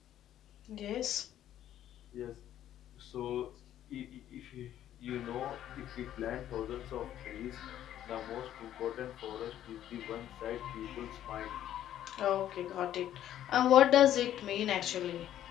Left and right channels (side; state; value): right; quieter; 11.6 dB